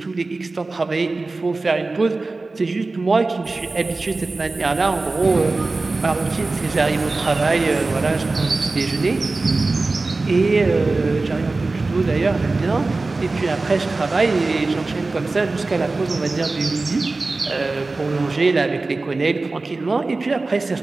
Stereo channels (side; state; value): left; quieter; 3.5 dB